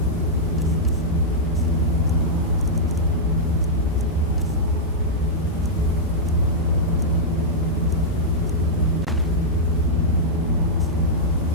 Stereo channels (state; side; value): normal; both; correlation -0.08